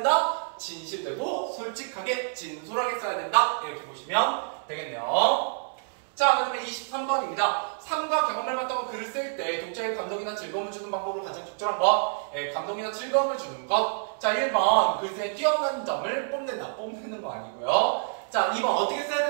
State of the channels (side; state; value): left; silent; 60 dB below the other